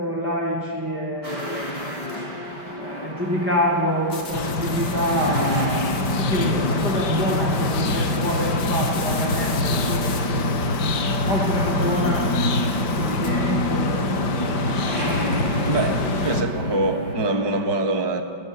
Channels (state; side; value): late; right; 5.1 ms